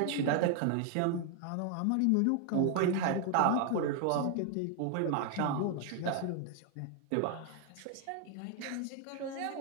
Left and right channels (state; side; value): different; both; correlation 0.00